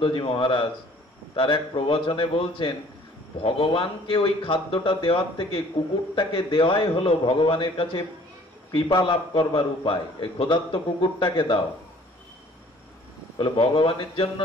মহারাজ তার এক প্রবচনে বলছেন ভগবানকে ওই খাদ্যটা দেওয়ার থেকে কুকুরটাকে দেওয়াই হলো ভগবানের কাছে কৃপা লাভ করবার উপায়। এই ক্ষুধার্ত কুকুরটাকে দাও। বলে ভগবানের জন্য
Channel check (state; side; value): normal; both; correlation 0.55